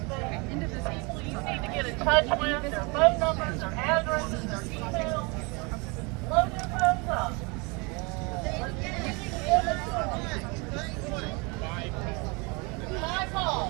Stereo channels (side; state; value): left; quieter; 29.1 dB